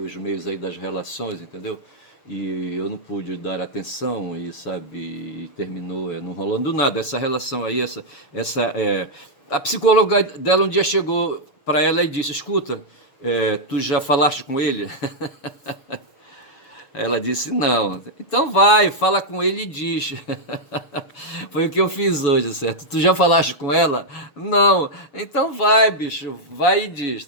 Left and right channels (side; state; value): right; late; 6.9 ms